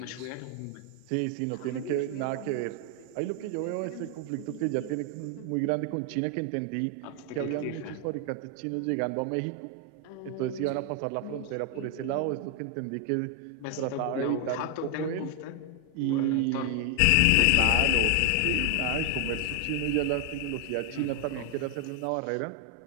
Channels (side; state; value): both; different; correlation 0.00